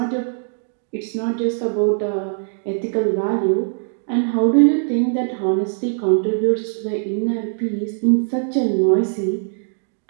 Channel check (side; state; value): left; silent; digital silence